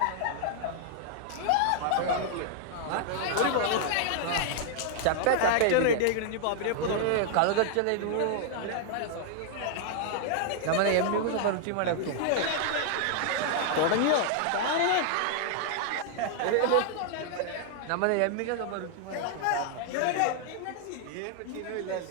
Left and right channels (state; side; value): different; both; correlation -0.01